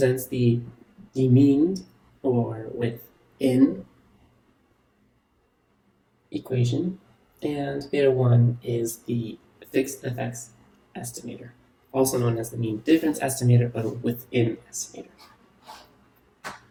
the mean or within equation, and beta 1 is the fixed effects estimator, also known as the mean difference estimator, but within estimator.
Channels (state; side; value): identical; both; correlation 1.00